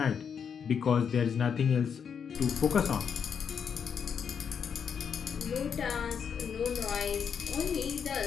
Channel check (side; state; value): right; quieter; 7.1 dB